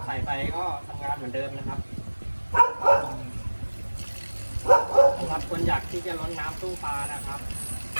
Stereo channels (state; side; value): inverted; both; correlation -1.00